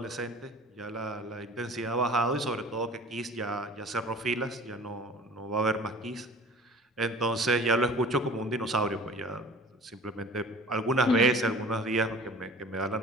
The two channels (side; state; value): both; normal; correlation 0.44